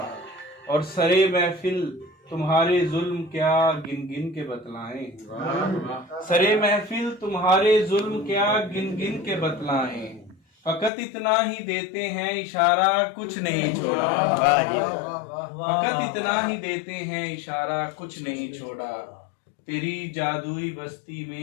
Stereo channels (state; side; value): drops out; right; at 10.9 s